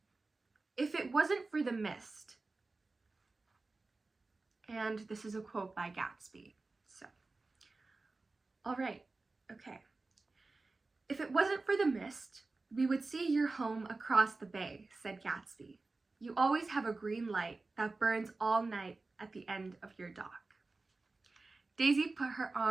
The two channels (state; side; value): quieter; left; 3.5 dB